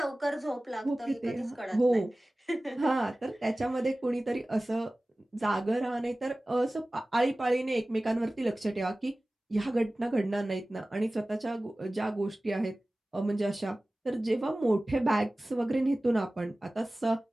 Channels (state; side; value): normal; both; correlation 0.97